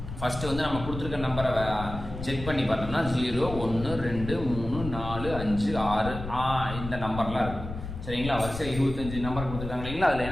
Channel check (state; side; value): noise; left; rumble, 9 dB below the sound